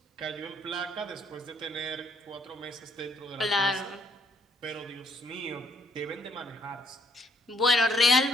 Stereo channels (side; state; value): both; normal; correlation 0.64